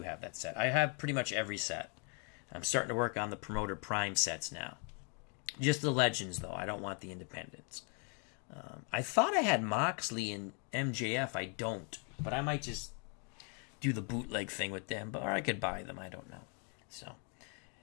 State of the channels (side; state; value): right; quieter; 38.2 dB